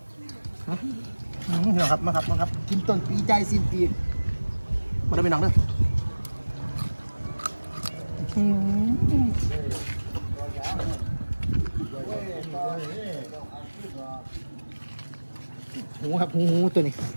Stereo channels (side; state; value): both; inverted; correlation -1.00